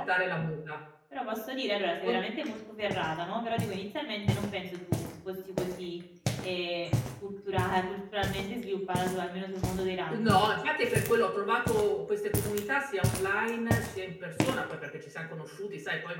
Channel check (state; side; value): identical; both; correlation 1.00